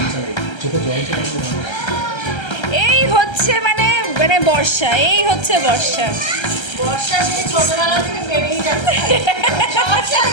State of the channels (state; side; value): late; right; 1.3 ms